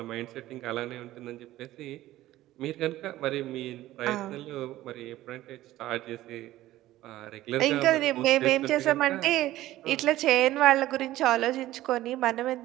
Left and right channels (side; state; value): left; quieter; 15.4 dB